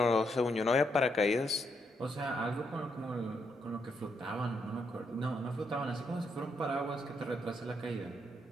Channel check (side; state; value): both; normal; correlation 0.77